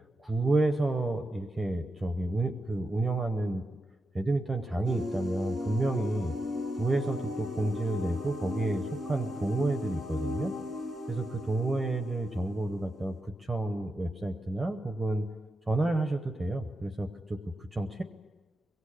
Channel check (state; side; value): normal; both; correlation 0.87